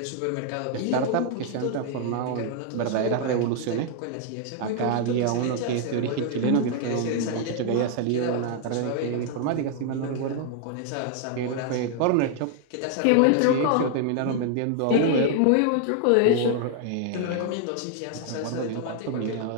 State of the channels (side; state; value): both; different; correlation 0.00